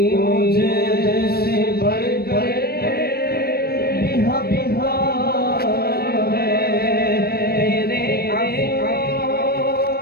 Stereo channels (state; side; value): late; right; 0.45 ms